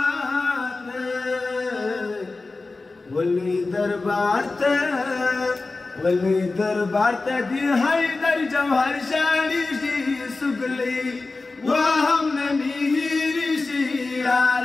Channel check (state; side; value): quieter; right; 3.6 dB